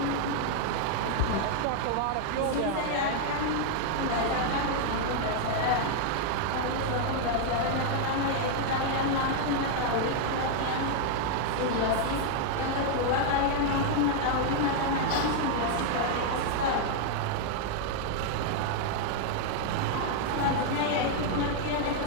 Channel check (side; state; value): both; different; correlation 0.00